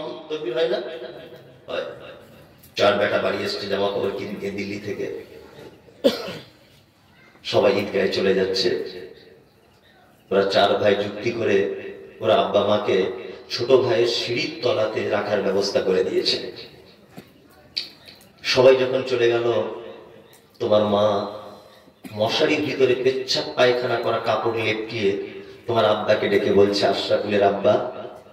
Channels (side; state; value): both; identical; correlation 1.00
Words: তাকবীর হয় না? 4 বেটা বাড়ি এসছে জামা কাপড় কিনতে দিল্লি থেকে। সবাই ঈদগাহে চলে যাচ্ছে। ওরা 4 ভাই যুক্তি করে ওরা আব্বা মাকে ছোট ভাইয়ের সিঁড়ির তলাতে রাখার ব্যবস্থা করে দিয়েছে। সবাই যখন চলে গেল, তোমার মা মশারির ভিতরে পেচ্ছাপ পায়খানা করা কাপড় লেপটিয়ে তোমার আব্বাকে ডেকে বলছে, আশরাফুলের আব্বা